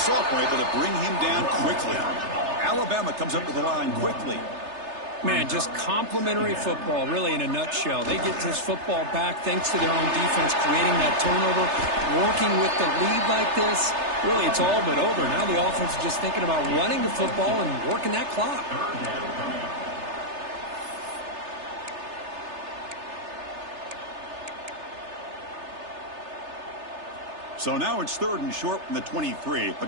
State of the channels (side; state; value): left; late; 3.3 ms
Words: able to bring him down quickly. Alabama comes up to the line quickly. Man, just complimentary football, really, in a nutshell. They get this football back thanks to their own defense, creating that turnover, working with the lead like this. Really, it's all but over. Now the offense is just thinking about running the football and working that clock. So now it's 3rd and short from the 23.